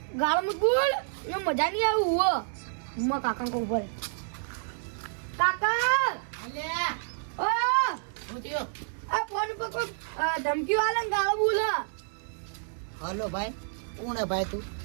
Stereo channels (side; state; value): left; silent; digital silence